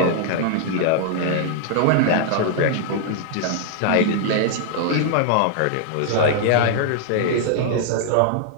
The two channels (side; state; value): both; different; correlation -0.01